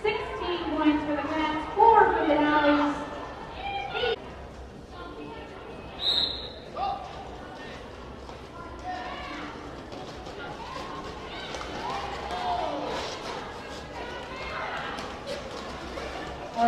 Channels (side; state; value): both; identical; correlation 1.00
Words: 16 points for the Cats, 4 for the Dollies. Or